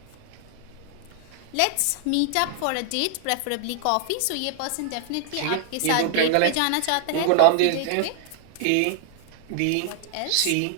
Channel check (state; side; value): different; both; correlation 0.00